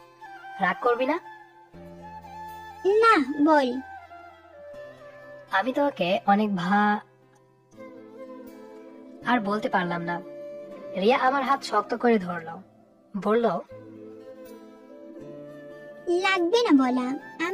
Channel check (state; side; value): identical; both; correlation 1.00